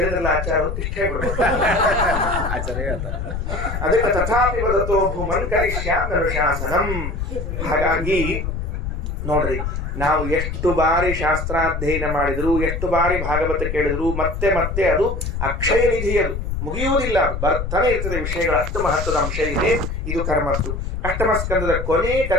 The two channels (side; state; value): left; noise; rumble, 4 dB below the sound